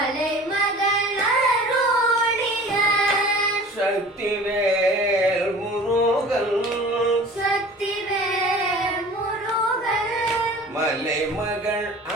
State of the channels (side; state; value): both; normal; correlation 0.43